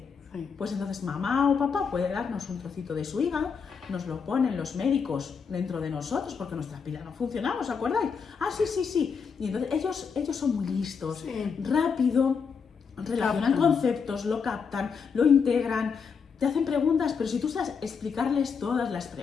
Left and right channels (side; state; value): right; quieter; 6.0 dB